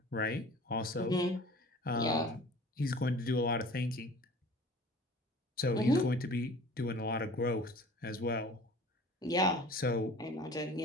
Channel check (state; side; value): normal; both; correlation 0.45